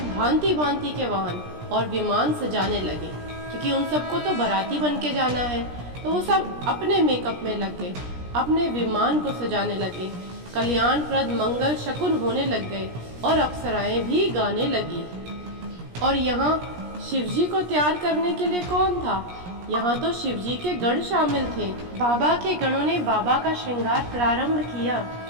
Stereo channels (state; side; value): late; left; 17 ms